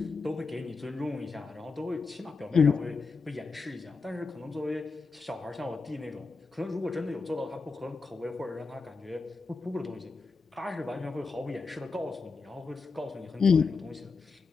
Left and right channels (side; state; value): right; quieter; 4.4 dB